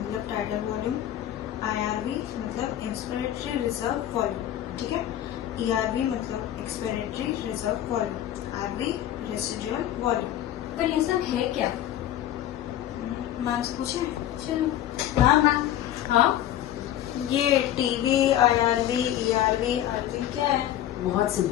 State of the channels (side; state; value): right; quieter; 12.2 dB